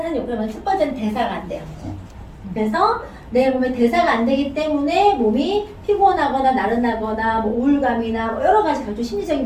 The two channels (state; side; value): identical; both; correlation 1.00